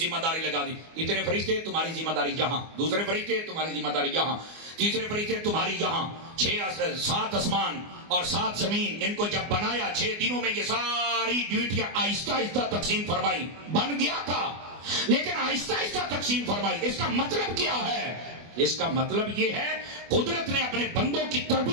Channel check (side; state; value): left; late; 24 ms